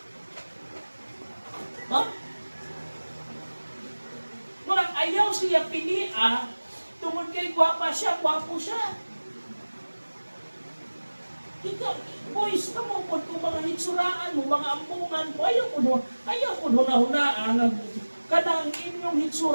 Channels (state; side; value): inverted; both; correlation -1.00